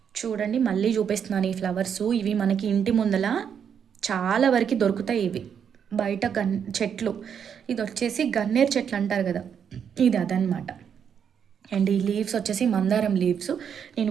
చూడండి మళ్ళీ చూపిస్తున్నాను ఈ ఫ్లవర్స్. ఇవి మనకి ఇంటి ముందల చాలా వరకు దొరుకుతాయి. ఇవి బయట చెట్లు, ఇది వచ్చేసి గన్నేరు చెట్లు అంటారు కదా, ఇది అదనమాట. అండ్ ఈ లీవ్స్ వచ్చేసి మందారం లీవ్స్. నేను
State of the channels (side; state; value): left; quieter; 7.7 dB